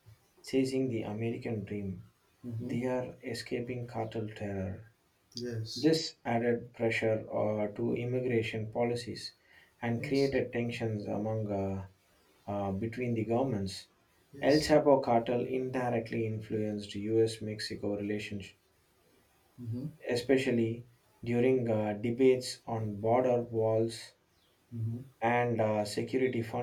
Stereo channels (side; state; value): both; identical; correlation 1.00